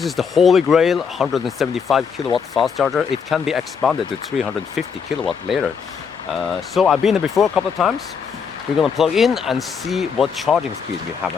is the holy grail 175 kilowatt fast charger. It can be expanded to 350 kilowatt later. So I've been there before a couple of times. We're gonna plug in and see what charging speed we have,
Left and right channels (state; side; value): quieter; right; 6.3 dB